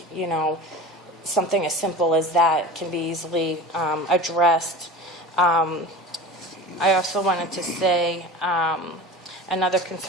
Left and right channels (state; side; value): normal; both; correlation 0.35